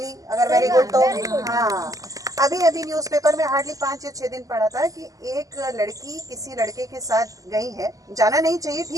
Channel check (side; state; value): left; late; 0.17 ms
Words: अगर वेरी गुड तो। हाँ, अभी न्यूज़पेपर में हार्डली 5 या 6 दिन पढ़ा था कि एक लड़की किसी लड़के के साथ गई है। जाना नहीं चाहिए,